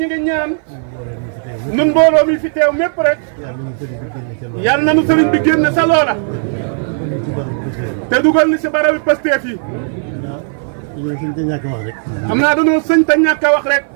ngi ñaan nun mbooloo mi fi teew mépp rek yal na nu sëriñ bi génne sa loola te dugal ni si barabi Pastef yi xam naa dañoo sëñ te ñàkk a wax rek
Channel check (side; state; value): left; silent; 56 dB below the other